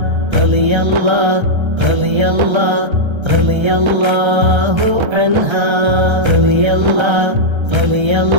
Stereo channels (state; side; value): late; left; 1.3 ms